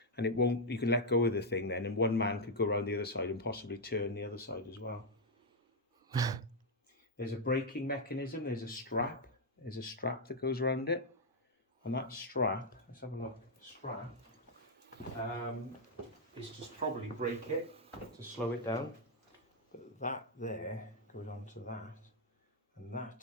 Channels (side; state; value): both; normal; correlation -0.01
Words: And it won't, you can let go of the thing then, and one man could go around the other side and possibly turn the other side as well. There's a braking mechanism, there's a strap that goes around it. And that strap, let's have a look, strap, is just probably brake it to slow it down. But that there goes onto that, and